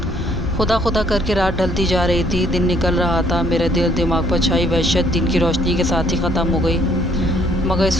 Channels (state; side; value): normal; both; correlation 0.64